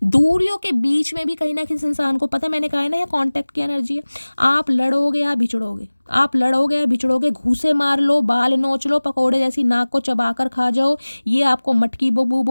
दूरियों के बीच में भी कहीं ना कहीं इंसान को पता है, मैंने कहा है ना, ये कॉन्टैक्ट की एनर्जी है। आप लड़ोगे या बिछड़ोगे, आप लड़ोगे या बिछड़ोगे, घूसे मार लो, बाल नोच लो, पकोड़े जैसी नाक को चबाकर खा जाओ, ये आपको मटकी बबू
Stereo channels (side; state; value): both; inverted; correlation -1.00